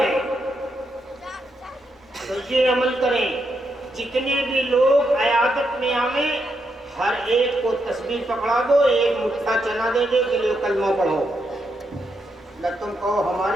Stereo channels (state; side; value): normal; both; correlation 0.81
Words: تو یہ عمل کریں، جتنے بھی لوگ عیادت میں آئیں ہر ایک کو تسبیح پکڑا دو، ایک مٹھا چنا دے دے کہ لو کلمہ پڑھو، نہ تم کہو